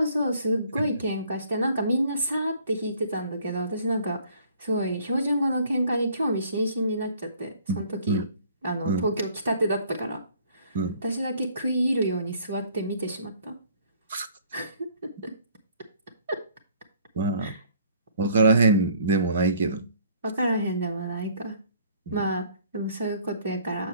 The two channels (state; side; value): inverted; both; correlation -0.58